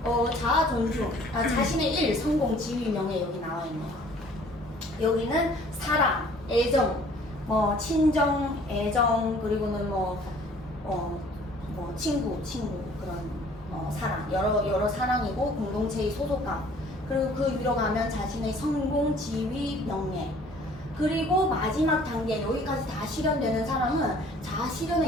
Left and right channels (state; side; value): normal; both; correlation 0.54